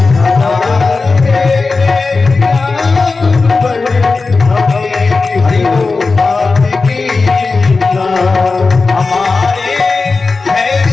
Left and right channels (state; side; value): quieter; right; 4.0 dB